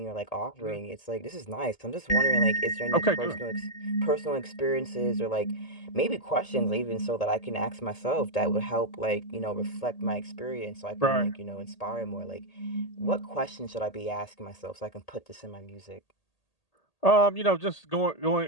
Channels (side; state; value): right; late; 1.8 ms